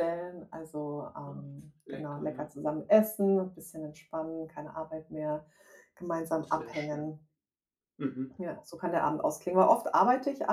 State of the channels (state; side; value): identical; both; correlation 1.00